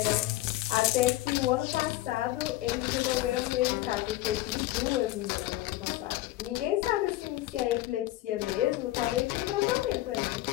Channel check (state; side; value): quieter; right; 16.3 dB